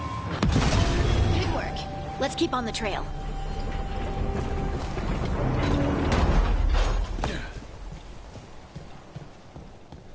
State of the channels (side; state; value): both; identical; correlation 1.00